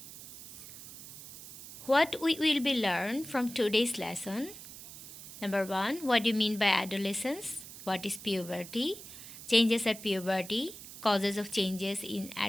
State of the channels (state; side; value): noise; right; hiss, 14 dB below the sound